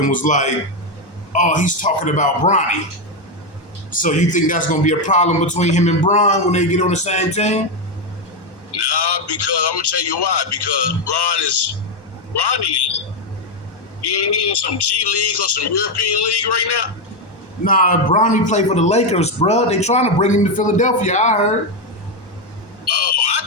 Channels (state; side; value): late; right; 1.1 ms